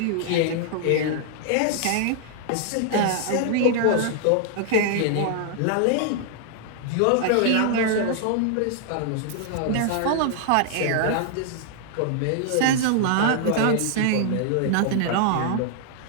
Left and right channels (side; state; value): both; different; correlation -0.01